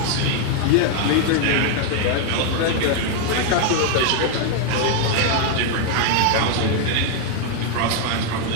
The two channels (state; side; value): different; both; correlation 0.00